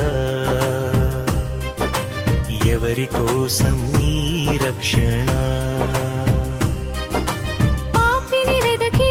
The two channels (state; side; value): identical; both; correlation 1.00